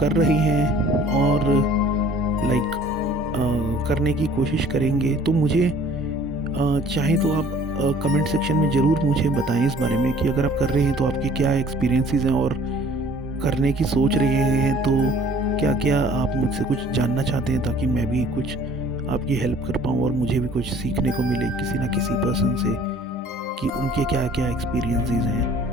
रहे हैं और करने की कोशिश करेंगे तो मुझे चाहे तो आप कमेंट सेक्शन में ज़रूर मुझे बताएं इस बारे में कि अगर आप कर रहे हैं तो आपके क्या एक्सपीरियंसेस हैं, और करने की सोच रहे हैं तो क्या क्या आप मुझसे कुछ जानना चाहते हैं, ताकि मैं भी कुछ आपकी हेल्प कर पाऊँ और मुझे भी कुछ सीखने को मिले किसी ना किसी पर्सन से कि उनके क्या क्या एक्सपीरियंसेस हैं।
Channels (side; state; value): both; normal; correlation 0.53